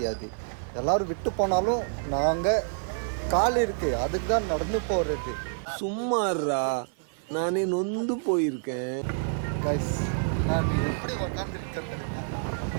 எல்லாரும் விட்டு போனாலும் நாங்க கால் இருக்கு, அதுக்கு தான் நடந்து போறது. சும்மாறா, நானே நொந்து போயிருக்கேன். கைஸ் நான் எப்படி உக்காந்துருக்கேன்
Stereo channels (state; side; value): silent; left; 55 dB below the other